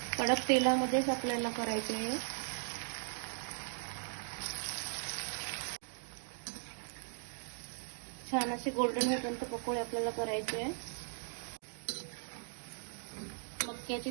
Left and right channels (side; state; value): left; silent; digital silence